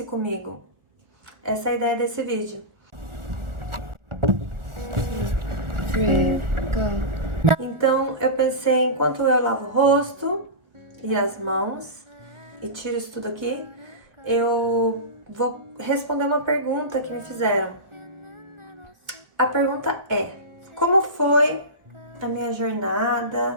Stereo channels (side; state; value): left; late; 1.4 ms